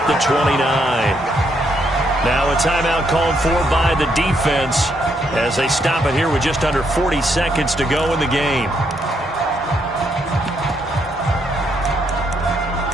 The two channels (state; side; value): normal; both; correlation 0.75